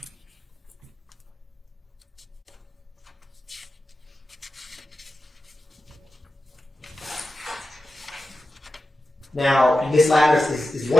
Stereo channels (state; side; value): normal; both; correlation 0.92